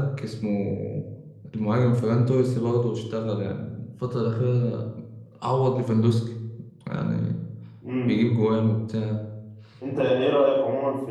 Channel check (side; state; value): both; identical; correlation 1.00